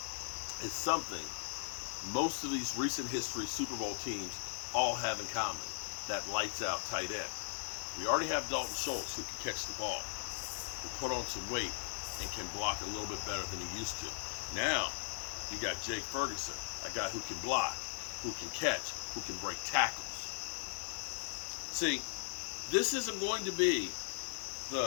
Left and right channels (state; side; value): silent; right; digital silence